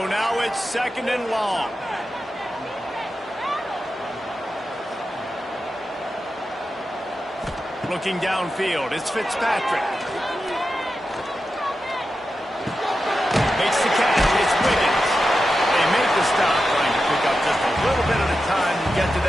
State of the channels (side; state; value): both; normal; correlation 0.90